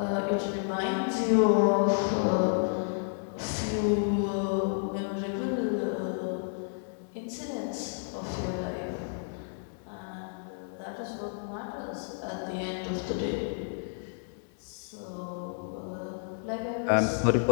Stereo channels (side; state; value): right; silent; digital silence